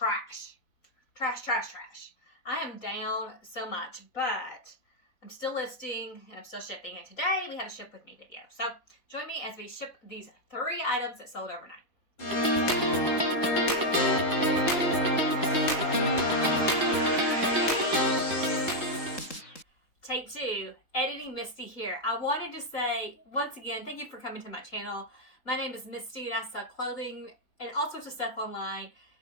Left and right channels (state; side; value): late; right; 3.8 ms